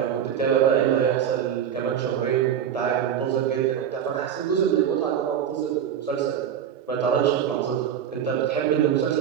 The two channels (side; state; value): left; quieter; 9.0 dB